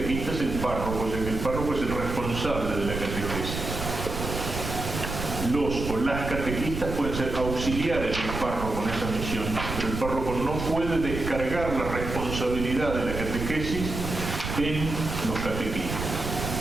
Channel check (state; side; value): noise; right; rumble, 5 dB below the sound